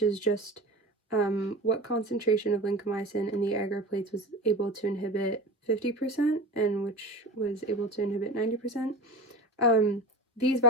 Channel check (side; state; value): both; normal; correlation 0.32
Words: is just what concentration of lincomycin in the agar plates was able to inhibit 50% and which was able to inhibit 90%. These